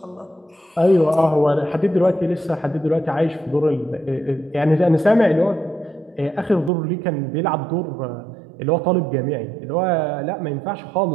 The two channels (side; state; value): left; drops out; at 6.7 s